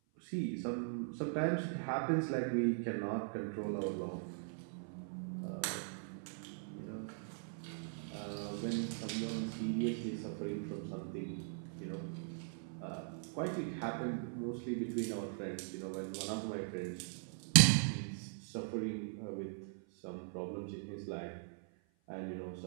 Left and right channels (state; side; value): silent; left; 51 dB below the other